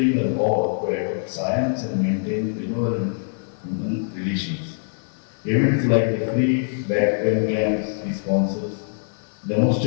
us all to adopt science and maintain benevolent human relations. Events like the free back pain camps he sponsors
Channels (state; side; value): silent; right; digital silence